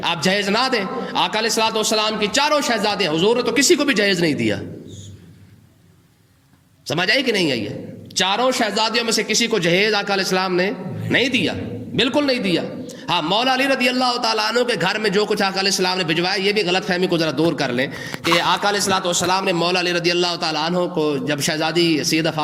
آپ جہیز نہ دیں۔ آقا علیہ الصلوۃ والسلام کی 4 شہزادیں، حضور نے تو کسی کو بھی جہیز نہیں دیا، سمجھ آئی کہ نہیں آئی ہے؟ 4 شہزادیوں میں سے کسی کو جہیز آقا علیہ السلام نے نہیں دیا، بالکل نہیں دیا۔ ہاں، مولا علی رضی اللہ تعالیٰ عنہ کے گھر میں جو کچھ آقا علیہ السلام نے بھجوایا، یہ بھی غلط فہمی کو ذرا دور کر لیں کہ آقا علیہ الصلوۃ والسلام نے مولا علی رضی اللہ تعالیٰ عنہ کو، جب شہزادی سیدہ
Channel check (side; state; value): both; identical; correlation 1.00